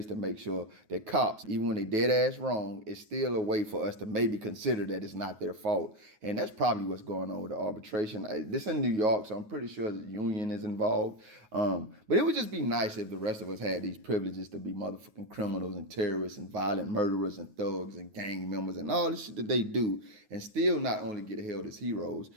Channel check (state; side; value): late; left; 9.4 ms